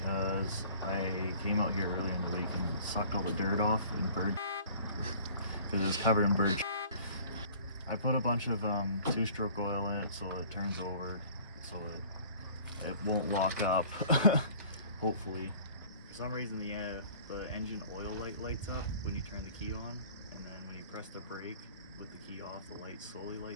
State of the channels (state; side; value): inverted; both; correlation -0.49